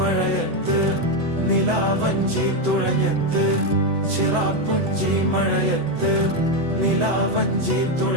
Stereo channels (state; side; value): late; left; 8.0 ms